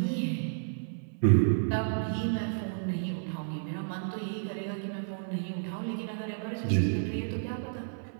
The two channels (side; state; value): left; silent; digital silence